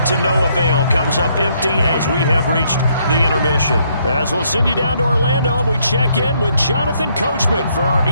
to no avail. Comes up empty as we have reached the intermission. As we'll send you down to Orlando, and we check in with Jonathan Coachman for our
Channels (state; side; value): inverted; both; correlation -0.71